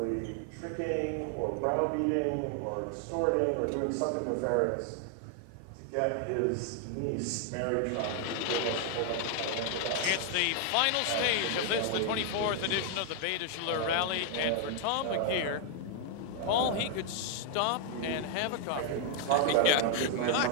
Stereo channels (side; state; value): both; different; correlation 0.00